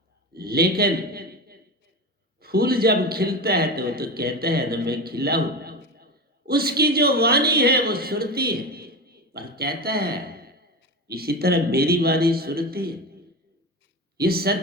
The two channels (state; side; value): normal; both; correlation 0.23